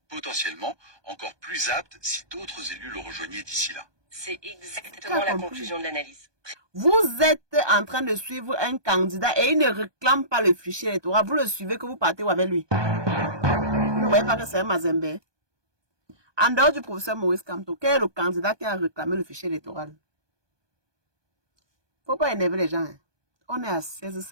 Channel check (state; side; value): late; left; 1.2 ms